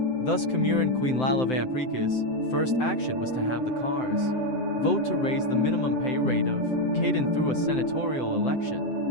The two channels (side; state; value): right; late; 7.8 ms